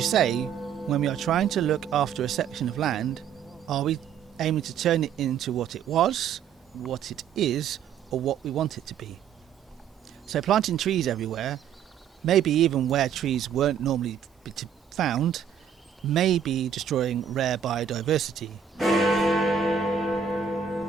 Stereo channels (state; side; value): quieter; left; 7.7 dB